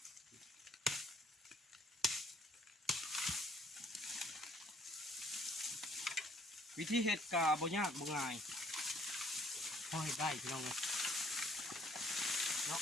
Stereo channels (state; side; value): normal; both; correlation 0.62